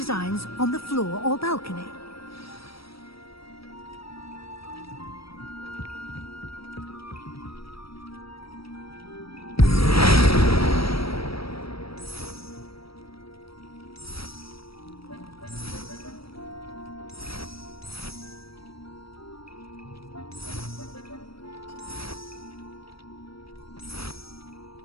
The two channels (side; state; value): right; late; 0.76 ms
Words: on the floor or balcony.